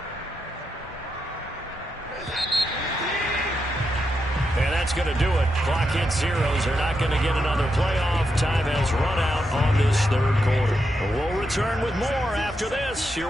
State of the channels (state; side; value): normal; both; correlation 0.84